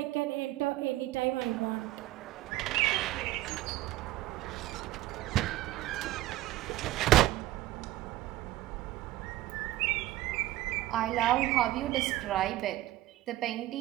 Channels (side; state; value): left; quieter; 16.3 dB